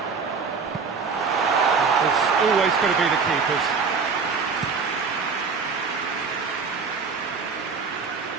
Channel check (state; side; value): quieter; left; 5.2 dB